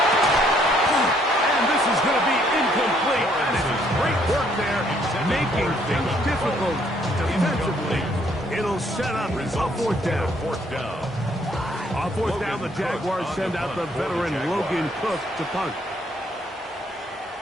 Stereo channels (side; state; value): both; normal; correlation 0.67